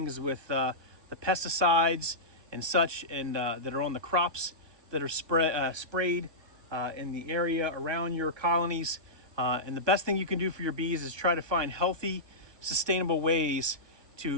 with the pesticides and such, and that are on the crops that are sprayed in the area around your colonies. And the best thing you can do for your bees is try to find healthy, sustainable ways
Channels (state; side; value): late; left; 1.2 ms